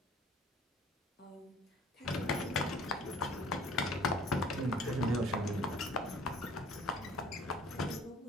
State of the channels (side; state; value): both; normal; correlation 0.52